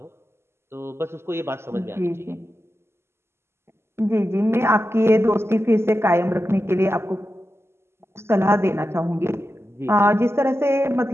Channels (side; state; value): left; late; 0.12 ms